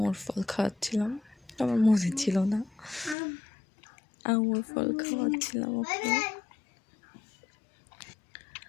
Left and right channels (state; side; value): drops out; right; at 3.2 s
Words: ফল খাওয়াচ্ছিলাম। আমার মনে ছিল না, আঙুর ফল খাওয়াচ্ছিলাম ওকে।